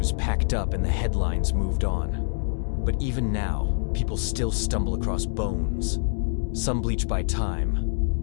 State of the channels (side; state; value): right; silent; digital silence